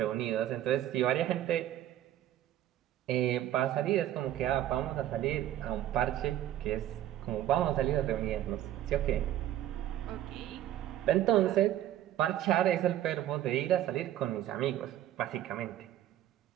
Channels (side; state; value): left; quieter; 12.4 dB